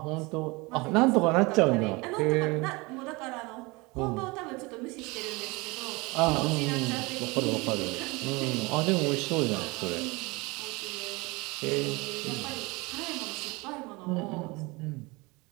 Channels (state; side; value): quieter; left; 25.0 dB